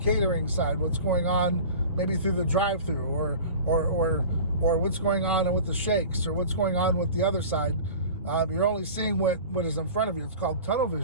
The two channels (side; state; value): both; inverted; correlation -0.39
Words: side, what's going on maybe through the drive-through, or what's going on with the shakes, or what's going on with the other side. You're only seeing what is in front of you. It's called tunnel